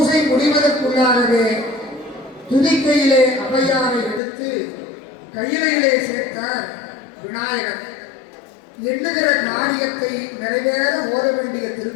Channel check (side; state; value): right; drops out; at 4.2 s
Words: முடிவதற்குள்ளாகவே துதிக்கையிலே ஔவையாரை எடுத்து கையிலே சேர்த்தார் விநாயகர். எண்ணுகிற காரியத்தை நிறைவேற ஓத வேண்டிய